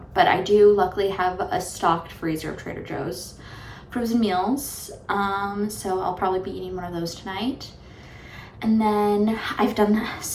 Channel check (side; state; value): both; identical; correlation 1.00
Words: but I do luckily have a stocked freezer of Trader Joe's frozen meals. So I'll probably be eating one of those tonight. And then I've done